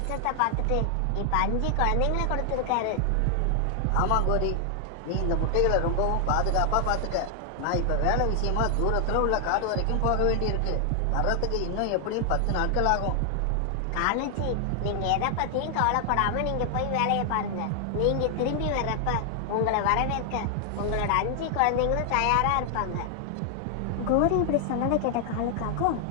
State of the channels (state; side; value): different; both; correlation 0.00